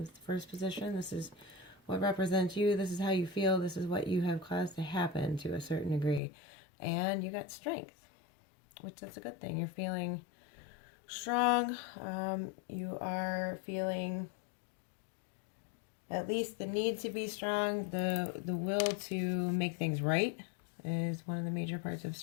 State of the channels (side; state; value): right; drops out; at 6.2 s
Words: the first position. This is what represents you. This is how you feel. This is what you have caused to happen to a certain degree. And you got strength, which is a good thing. You're feeling strong. You are feeling at least the need to be strong. The will to make things right is one of the major parts of